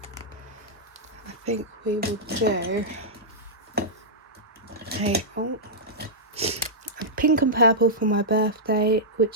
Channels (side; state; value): both; normal; correlation -0.11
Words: I think we will do a pink and purple for my birthday,